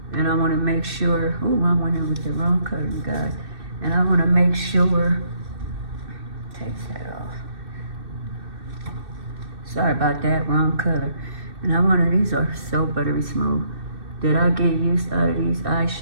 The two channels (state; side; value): late; left; 2.6 ms